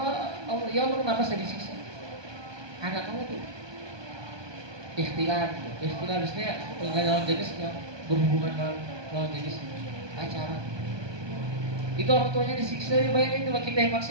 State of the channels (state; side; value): late; left; 1.2 ms